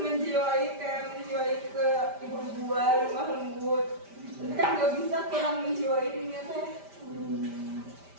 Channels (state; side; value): late; left; 5.1 ms